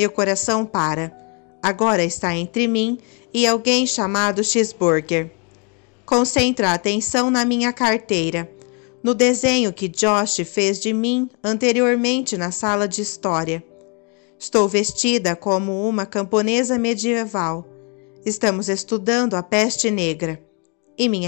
coração para. Agora está entre mim e alguém chamado Cheeseburger. Concentra a atenção na minha carteira, no desenho que Josh fez de mim anteriormente na sala de história. Estou vestida como uma camponesa medieval. Estamos estudando a peste negra. E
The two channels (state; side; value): quieter; right; 34.6 dB